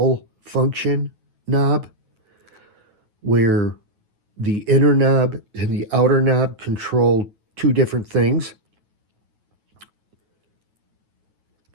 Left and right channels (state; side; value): late; left; 9.3 ms